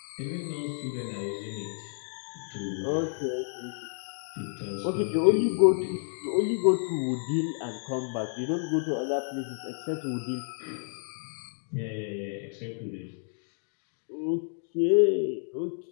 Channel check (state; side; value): silent; right; digital silence